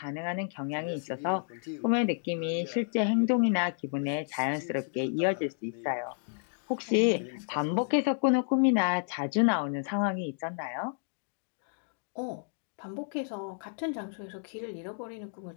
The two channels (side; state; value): right; silent; digital silence